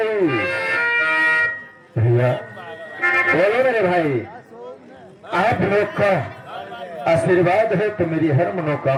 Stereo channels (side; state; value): both; identical; correlation 1.00